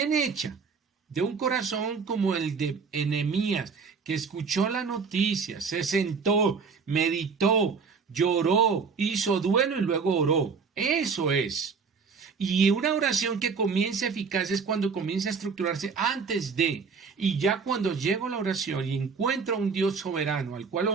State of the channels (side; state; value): left; quieter; 5.3 dB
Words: hecha, de un corazón como el de Nehemías, que escuchó la noticia, se sentó, meditó, lloró, hizo duelo y luego oró. Eso es. Y una oración que comienza eficaz es cuando comienza a estructurarse antes de. Y ya cuando llego a la oración y encuentro a un Dios soberano al cual